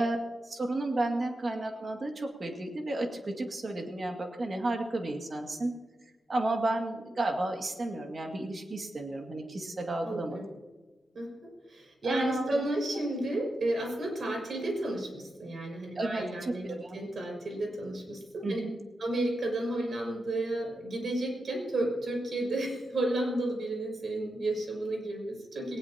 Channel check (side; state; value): both; normal; correlation 0.88